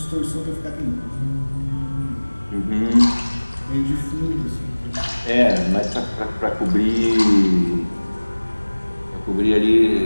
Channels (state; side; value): inverted; both; correlation -1.00